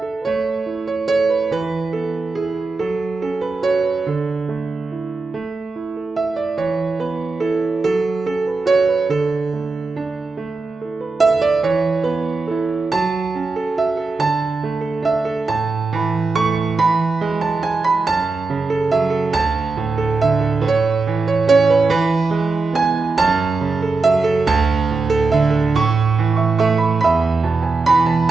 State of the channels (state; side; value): quieter; left; 3.8 dB